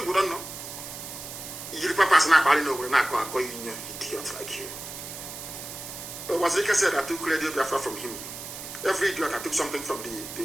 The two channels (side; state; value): right; noise; hiss, 10 dB below the sound